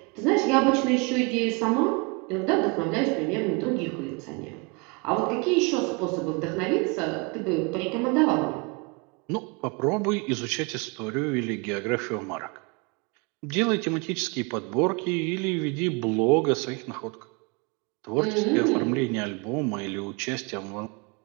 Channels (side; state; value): left; quieter; 29.7 dB